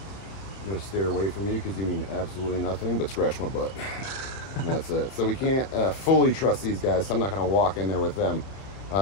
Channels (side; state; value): right; late; 31 ms